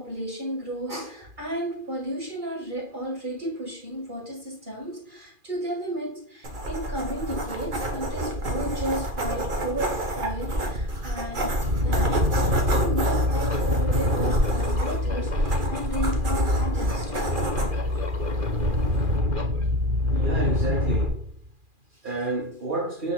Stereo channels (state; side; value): late; left; 2.4 ms